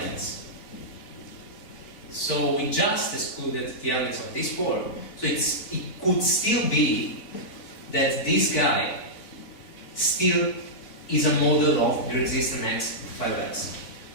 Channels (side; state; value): right; late; 4.5 ms